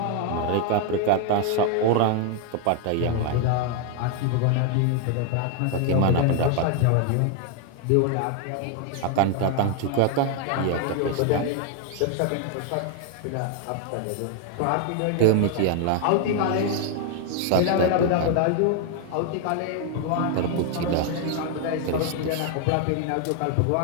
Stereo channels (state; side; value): different; both; correlation 0.01